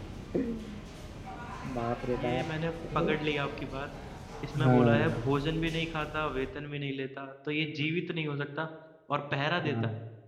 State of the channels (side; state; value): both; identical; correlation 1.00